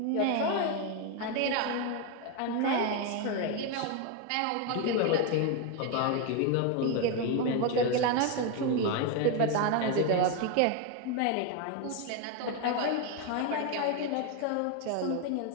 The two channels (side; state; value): both; different; correlation 0.01